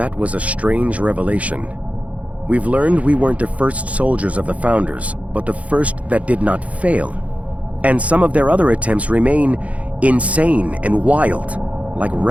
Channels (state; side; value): late; left; 0.066 ms